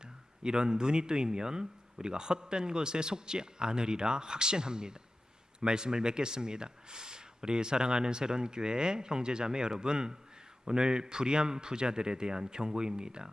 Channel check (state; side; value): normal; both; correlation 0.94